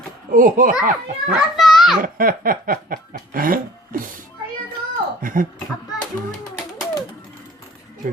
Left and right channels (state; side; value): normal; both; correlation 0.49